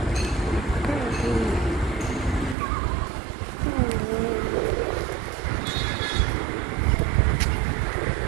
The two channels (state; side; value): drops out; left; at 2.6 s